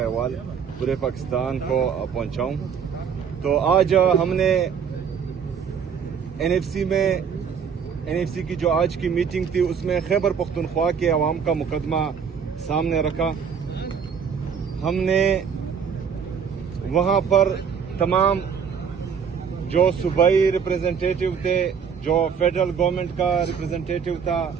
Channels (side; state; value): left; quieter; 6.9 dB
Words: पूरे पाकिस्तान को पहुँचाऊँ। तो आज हमने एनएफसी की जो आज की मीटिंग थी उसमें खैबर पख्तूनख्वा के अवाम का मुकदमा सामने रखा। हमने वहाँ पर तमाम जो सूबाई रिप्रेजेंटेटिव थे, जो फेडरल गवर्नमेंट का रिप्रेजेंटेटिव था,